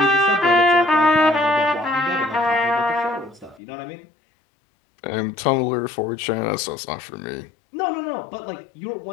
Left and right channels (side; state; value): right; drops out; at 3.6 s